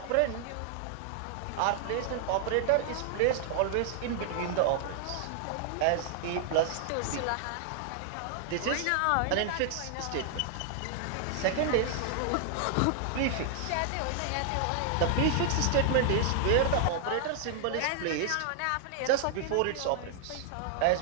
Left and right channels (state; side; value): different; both; correlation 0.00